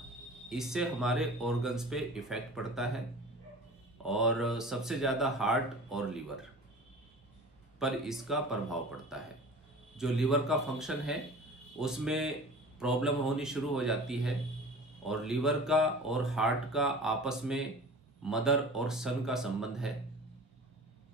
इससे हमारे ऑर्गन्स पे इफेक्ट पड़ता है और सबसे ज़्यादा हार्ट और लीवर पर इसका प्रभाव पड़ता है। जो लीवर का फंक्शन है उसमें प्रॉब्लम होनी शुरू हो जाती है, और लीवर का और हार्ट का आपस में मदर और सन का संबंध है,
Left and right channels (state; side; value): normal; both; correlation 0.39